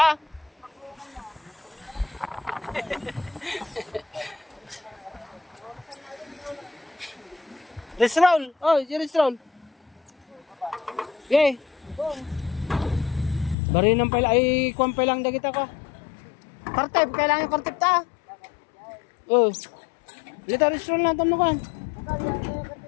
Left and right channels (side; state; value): right; drops out; at 13.6 s